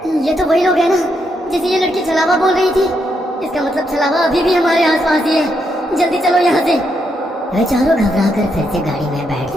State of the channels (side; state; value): both; normal; correlation 0.79